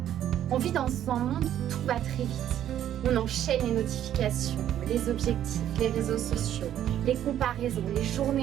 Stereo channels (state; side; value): quieter; left; 11.0 dB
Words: On vit dans un monde où tout va très vite. On enchaîne les notifications, les objectifs, les réseaux sociaux, les comparaisons, les